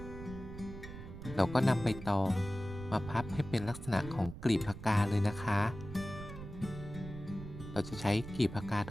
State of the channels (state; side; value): noise; right; rumble, 11 dB below the sound